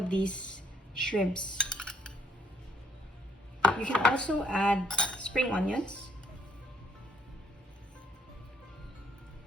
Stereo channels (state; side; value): normal; both; correlation 0.68